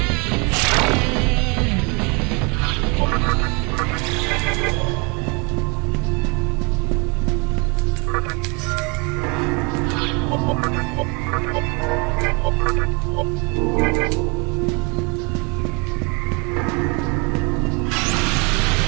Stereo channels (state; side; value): quieter; left; 31.1 dB